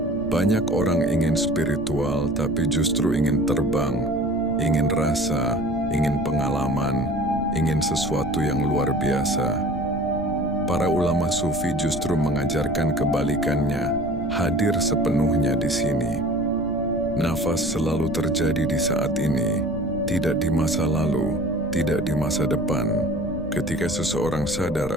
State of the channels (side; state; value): left; noise; rumble, 10 dB below the sound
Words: Banyak orang ingin spiritual, tapi justru ingin terbang, ingin rasa, ingin pengalaman, ingin sesuatu yang luar biasa. Para ulama sufi justru mengajarkan kebalikannya, hadir sepenuhnya di sini. Nafas selalu terjadi di saat ini, tidak di masa lalu, tidak di masa depan. Ketika seseorang sadar